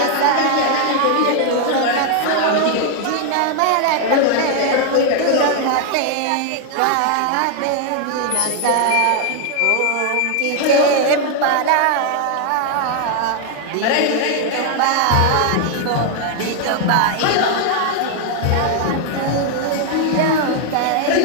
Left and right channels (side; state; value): both; different; correlation 0.00